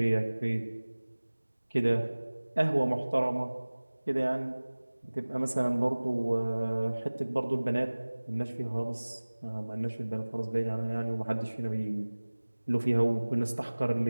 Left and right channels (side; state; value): both; inverted; correlation -1.00